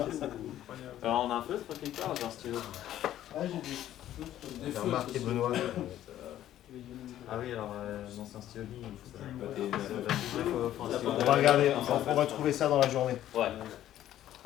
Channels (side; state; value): right; quieter; 12.4 dB